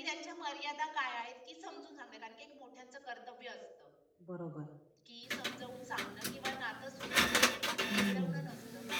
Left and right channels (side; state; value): both; identical; correlation 1.00